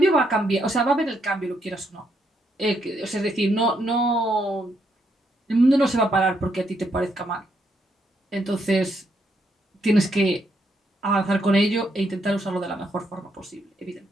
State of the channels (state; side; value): normal; both; correlation 0.76